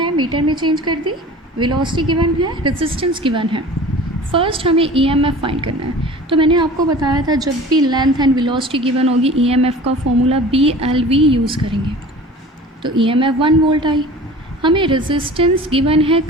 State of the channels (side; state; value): both; normal; correlation 0.41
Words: मीटर में चेंज कर दी, वेलोसिटी गिवन है, रेजिस्टेंस गिवन है। फर्स्ट हमें EMF फाइंड करना है, तो मैंने आपको बताया था जब भी लेंथ एंड वेलोसिटी गिवन होगी EMF का फॉर्मूला BLV यूज़ करेंगे, तो EMF 1 वोल्ट आई। हमें रेजिस्टेंस गिवन है,